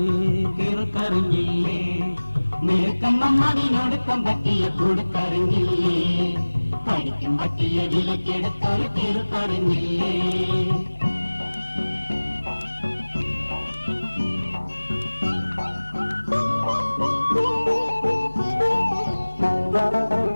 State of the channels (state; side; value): inverted; both; correlation -1.00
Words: കീർക്കറിഞ്ഞില്ലേ മിടുക്കൻ മമ്മതിനൊടുക്കം പറ്റിയ കൊടുക്കറിഞ്ഞില്ലേ കടിക്കും പറ്റിയ വിലക്കെടുത്തൊരു കീർക്കറിഞ്ഞില്ലേ